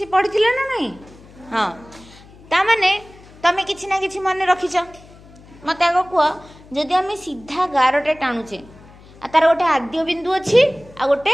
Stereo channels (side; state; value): left; noise; hum, 23 dB below the sound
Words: पढ़िथिले ना नहीं। हां ता माने तमे किछि ना किछि मन रखिछ मते आगो कुआ जदि आमे सीधा गारटे टाणुचे आ तार गोटे आद्य बिंदु अछि आ